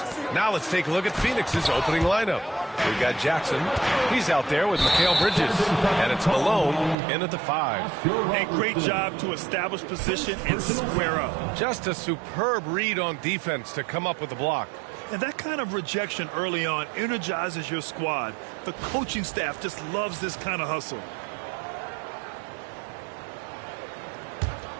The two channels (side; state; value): left; drops out; at 7.0 s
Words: Now let's take a look at Phoenix's opening lineup. We've got Jackson. He's out there with Mikal Bridges. And it's Malone in at the 5. A great job to establish position and square up. Just a superb read on defense to come up with the block. And that kind of rejection early on energizes your squad. The coaching staff just loves this kind of hustle.